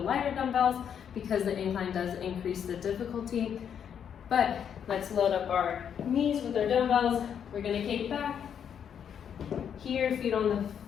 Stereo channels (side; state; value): right; quieter; 8.2 dB